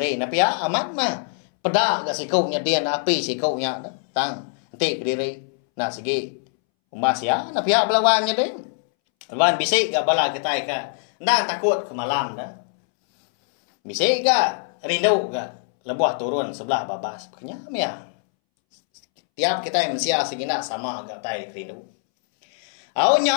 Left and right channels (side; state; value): right; silent; 64 dB below the other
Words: Tapi ya amat mah. Pedak gak sikuknya dia api sikuknya tang nanti ke diri. Nah segi umbas ya, na pihak belawannya deh. Lawan bisik gak bala kita ka. Ndak takut ke malam dah. Bisik gak rindu gak lebuh turun sebelah babas. Kenyam ya. Tiap kita yang mensia segina sama gak tai rindu. Au